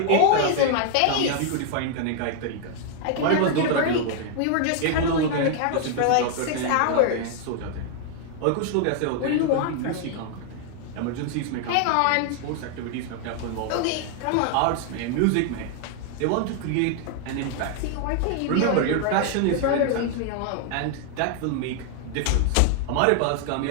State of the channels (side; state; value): both; different; correlation 0.00